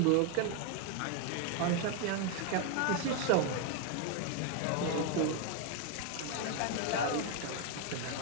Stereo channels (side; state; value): both; different; correlation 0.01